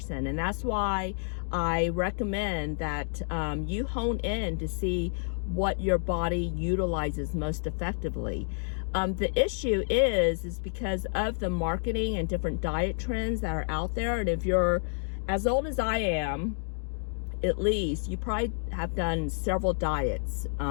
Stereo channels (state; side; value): silent; right; digital silence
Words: And that's why I recommend that you hone in to see what your body utilizes most effectively. The issue is because of the marketing and different diet trends that are out there. And if you're as old as I am, at least, you probably have done several diets